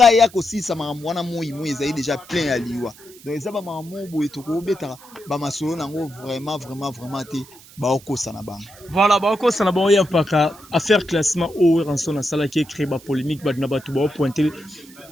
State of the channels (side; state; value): right; noise; hiss, 22 dB below the sound